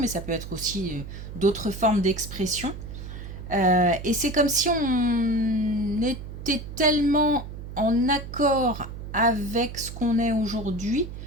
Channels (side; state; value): right; noise; hum, 10 dB below the sound